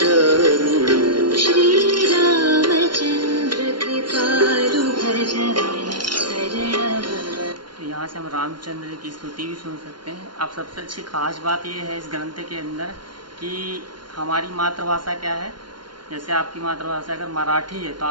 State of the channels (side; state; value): left; late; 0.71 ms